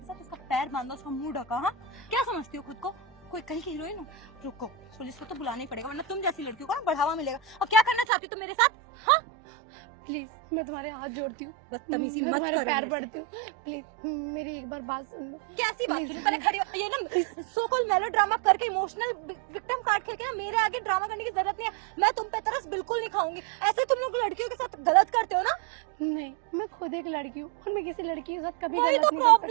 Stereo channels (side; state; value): left; drops out; at 8.1 s